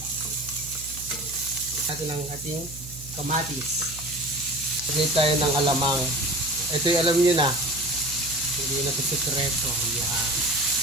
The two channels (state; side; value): noise; right; hum, 15 dB below the sound